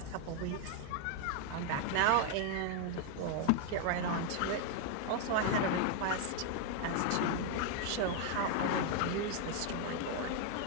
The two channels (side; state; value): both; different; correlation 0.00